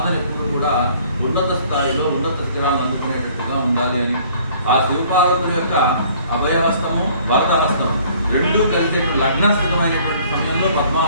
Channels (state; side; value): inverted; both; correlation -0.56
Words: ఎప్పుడు కూడా ఉన్నత స్థాయిలో ఉన్నత స్థిరాలను అందుకునేటట్టుగా ఉండాలి అని, ఆ శివపార్వతుల యొక్క అభయహస్తము వరదహస్తము రెండూ కలిసే లగ్న స్థిరమైనటువంటి సమయంలో